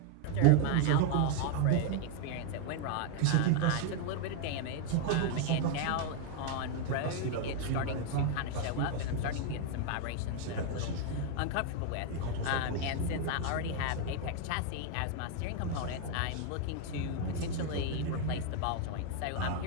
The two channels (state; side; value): different; both; correlation 0.00